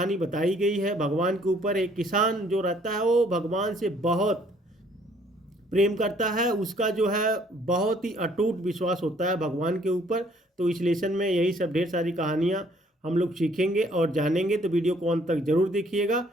बताई गई है भगवान के ऊपर। एक किसान जो रहता है वो भगवान से बहुत प्रेम करता है, उसका जो है बहुत ही अटूट विश्वास होता है भगवान के ऊपर। तो इस लेसन में यही सब ढेर सारी कहानियाँ हम लोग सीखेंगे और जानेंगे। तो वीडियो को अंत तक जरूर देखिएगा।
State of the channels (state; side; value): normal; both; correlation 0.62